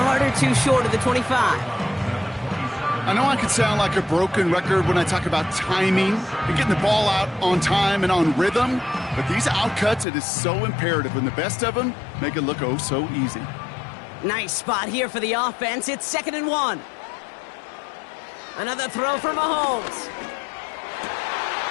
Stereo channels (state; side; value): drops out; right; at 10.1 s